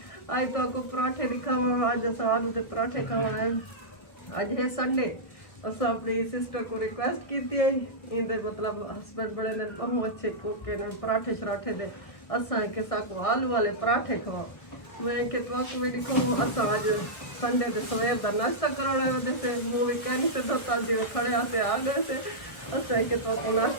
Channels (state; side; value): late; right; 1.4 ms